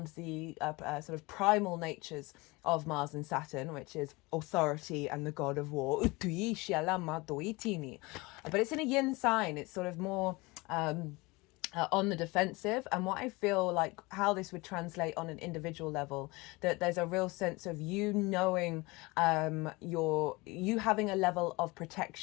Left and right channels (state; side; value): quieter; right; 23.9 dB